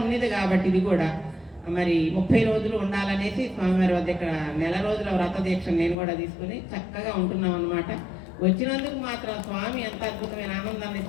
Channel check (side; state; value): right; drops out; at 6.0 s